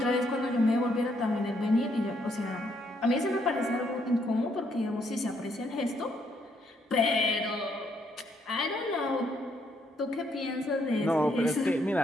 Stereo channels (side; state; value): both; normal; correlation 0.72